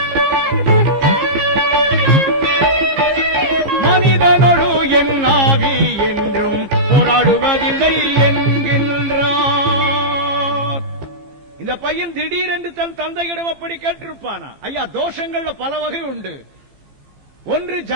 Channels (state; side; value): late; left; 15 ms